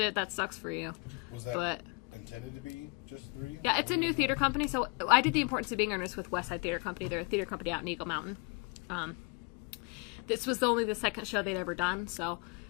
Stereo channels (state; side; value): quieter; right; 31.7 dB